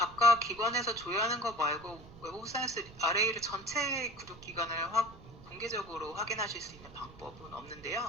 기관에서 조회하는 거 말고 웹 오브 사이언스 RA를 전체 그룹 기관을 공개적으로 확인하실 수 있는 방법은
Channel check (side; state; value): right; noise; rumble, 19 dB below the sound